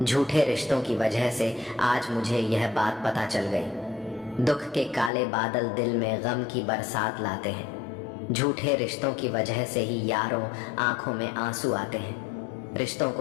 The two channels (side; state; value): right; drops out; at 5.1 s